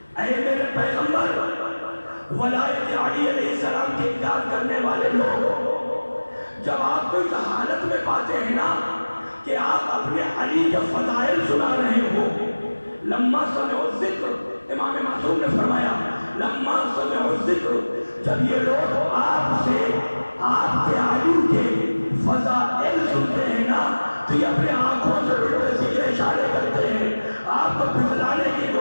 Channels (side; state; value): both; inverted; correlation -1.00